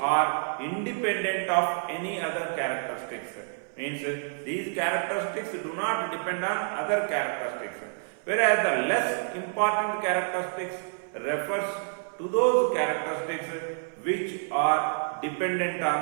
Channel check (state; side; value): silent; left; 57 dB below the other